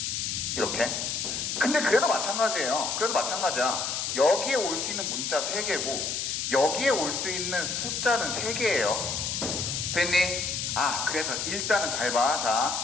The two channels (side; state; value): left; noise; hiss, 2 dB below the sound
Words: 이렇게. 근데 그래도 마찬가지예요. 여기에 올 수 있는 문자 3개고 여기에 올 수 있는 숫자는 3개예요. 됐니? 아, 그래서 일단은 잘 봐.